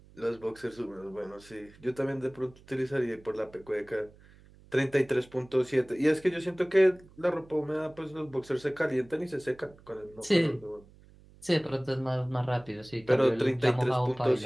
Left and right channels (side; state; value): right; noise; hum, 25 dB below the sound